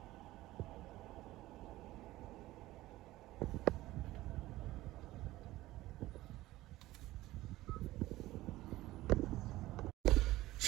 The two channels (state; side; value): quieter; left; 16.9 dB